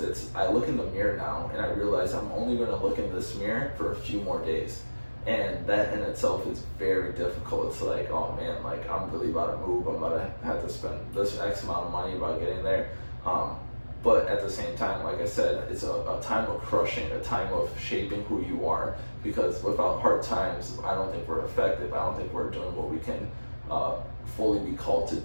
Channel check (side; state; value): both; inverted; correlation -1.00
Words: I look in the mirror now, and I realize I'm only going to look in this mirror for a few more days. And that in itself is very difficult. It's like, oh man, like I'm really about to move. I'm about to have to spend this X amount of money about getting there. But at the same time, like I said, it's a time of crushing, a time of shaping who you are. Because without hard times, I don't think we're effective. I don't think we're doing what we can fully be called to